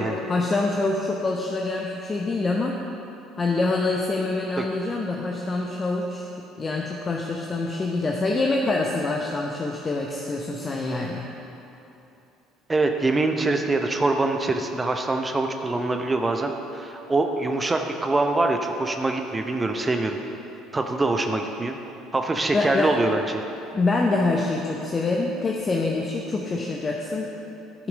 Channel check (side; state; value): both; normal; correlation 0.80